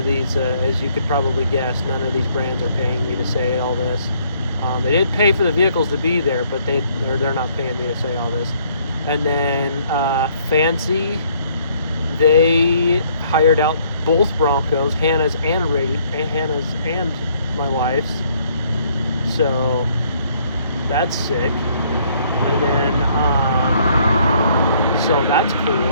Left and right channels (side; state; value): both; inverted; correlation -0.65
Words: as you could probably guess, none of these brands are paying me to say all this. They did pay for the vehicles to be there, but they're not paying me to say all this. And then Fancy, they hired out both Broncos, Hannah's and my wife's. So that's sick. And then so that's